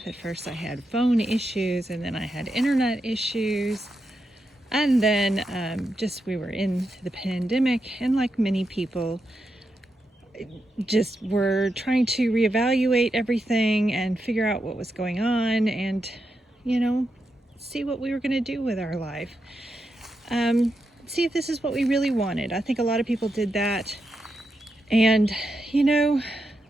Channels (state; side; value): normal; both; correlation 0.86